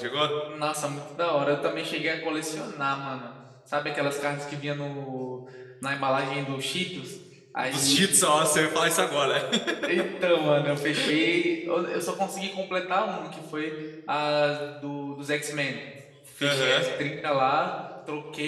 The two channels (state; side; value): identical; both; correlation 1.00